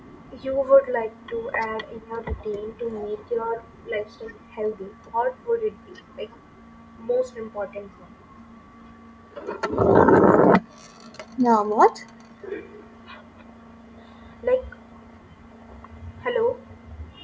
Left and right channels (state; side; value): identical; both; correlation 1.00